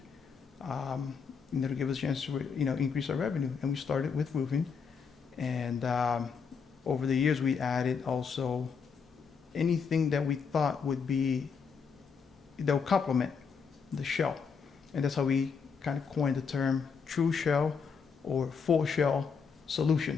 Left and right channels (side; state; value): right; quieter; 5.9 dB